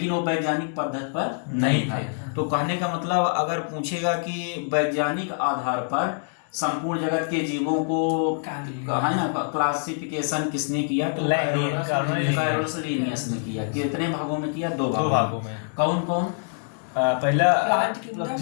वो वैज्ञानिक पद्धति पर नहीं था। तो कहने का मतलब अगर पूछेगा कि वैज्ञानिक आधार पर संपूर्ण जगत के जीवों को है ना क्लासिफिकेशन किसने किया, तो कैरोलस लिनियस ने किया। कितने भागों में किया? 2 भागों में। कौन कौन? पहला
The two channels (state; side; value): silent; right; 62 dB below the other